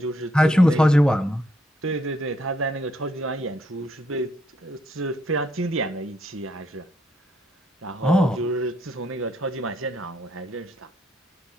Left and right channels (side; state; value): both; normal; correlation 0.73